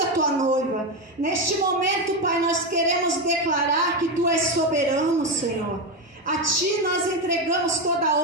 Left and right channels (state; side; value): normal; both; correlation 0.12